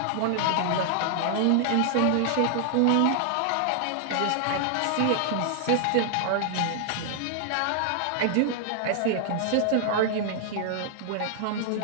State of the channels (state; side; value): different; both; correlation -0.01